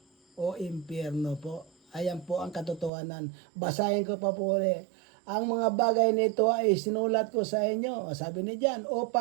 o impyerno po. Ayan po ang katotohanan. Basahin ko pa po ulit. Ang mga bagay nito ay sinulat ko sa inyo, sabi ni John,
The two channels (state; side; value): drops out; left; at 2.9 s